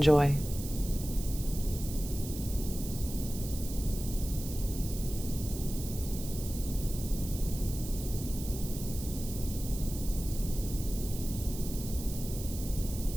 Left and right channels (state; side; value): noise; right; hiss, 11 dB below the sound